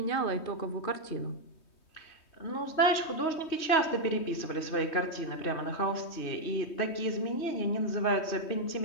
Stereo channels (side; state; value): right; late; 3.2 ms